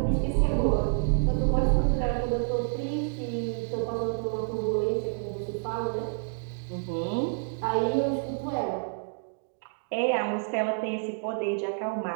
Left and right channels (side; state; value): left; silent; digital silence